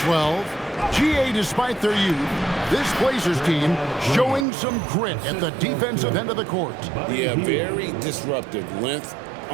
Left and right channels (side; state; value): left; drops out; at 4.5 s